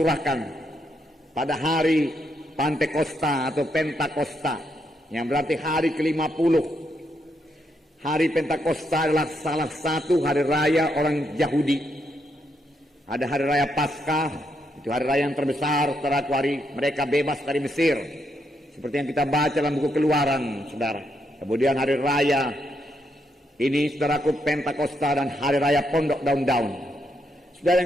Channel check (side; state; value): both; normal; correlation 0.79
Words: pada hari Pantekosta atau Pentakosta, yang berarti hari ke-50. hari Pentakosta adalah salah satu hari raya orang Yahudi. Ada hari raya Paskah, itu hari raya yang terbesar, saudaraku, hari mereka bebas dari Mesir. Seperti yang kita baca dalam buku Keluaran, saudara. Kemudian hari raya ini, saudaraku, Pentakosta dan hari raya Pondok Daun-Daun. Saudara